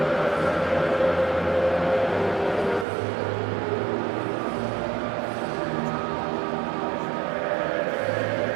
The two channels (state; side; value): drops out; left; at 2.9 s